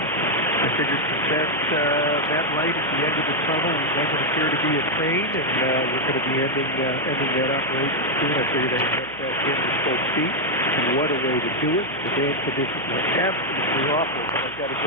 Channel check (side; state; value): right; noise; hum, 21 dB below the sound